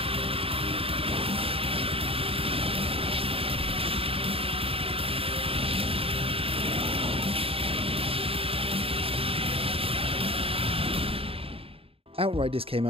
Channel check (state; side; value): late; left; 0.27 ms